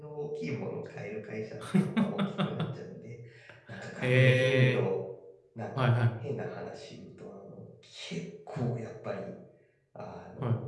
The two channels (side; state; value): both; identical; correlation 1.00